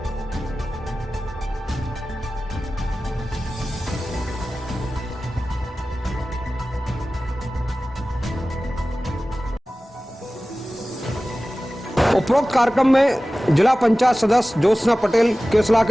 उपरोक्त कार्यक्रम में जिला पंचायत सदस्य ज्योत्सना पटेल, केसला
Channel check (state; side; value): normal; both; correlation 0.96